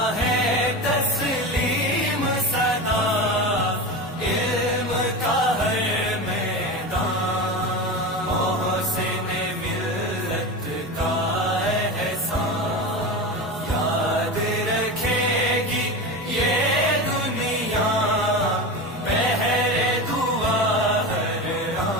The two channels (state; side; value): normal; both; correlation 0.25